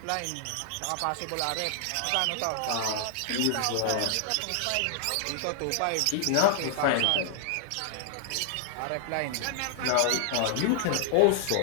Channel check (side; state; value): both; different; correlation -0.01